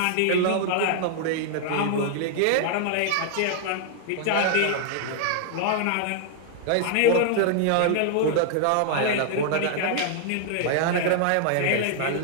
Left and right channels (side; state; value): both; different; correlation -0.01